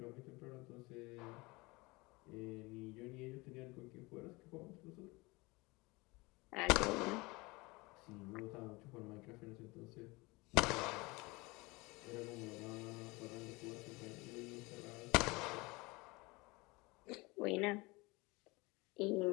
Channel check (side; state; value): right; quieter; 24.2 dB